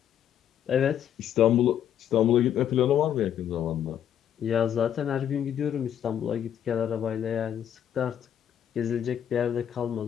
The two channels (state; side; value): quieter; right; 9.8 dB